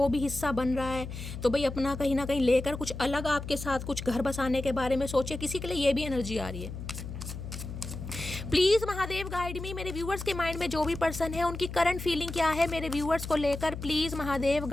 भी हिस्सा बन रहा है तो भाई अपना कहीं ना कहीं लेकर कुछ अलग आपके साथ कुछ घर बसाने के बारे में सोचिए, किसी के लिए ये भी एनर्जी आ रही है। प्लीज महादेव गाइड मी। मेरे व्यूवर्स के माइंड में जो भी पर्सन है उनकी करंट फीलिंग क्या है मेरे व्यूवर्स को लेकर, please Mahadev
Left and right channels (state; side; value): noise; left; hum, 8 dB below the sound